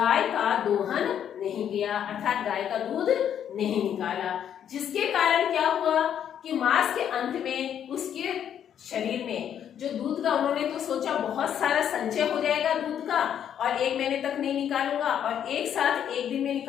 का दोहन नहीं किया, अर्थात गाय का दूध नहीं निकाला। जिसके कारण क्या हुआ कि मास के अंत में उसके शरीर में जो दूध का, उन्होंने तो सोचा बहुत सारा संचय हो जाएगा दूध का, और 1 महीने तक नहीं निकालूंगा और एक साथ 1 दिन में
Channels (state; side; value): quieter; right; 9.3 dB